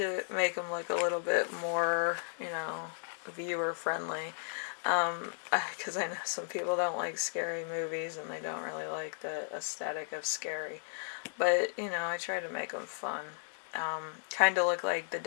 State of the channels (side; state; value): right; silent; digital silence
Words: make them look a little bit more, viewer friendly. Because I know some people don't like scary movies, and they don't really like the aesthetic of scary. But, I try to make them fun. Kind of look like the